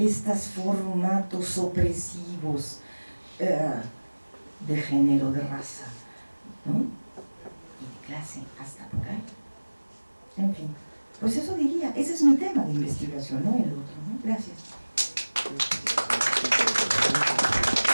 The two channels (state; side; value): inverted; both; correlation -1.00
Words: formatos opresivos de género, de raza, ¿no? Y de clase, hasta por ahí. En fin, pues eso diría, ese es mi tema de investigación, no el otro, ¿no? Gracias.